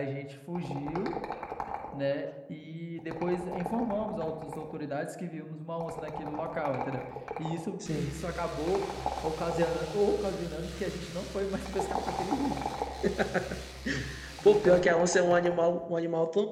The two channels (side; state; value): both; identical; correlation 1.00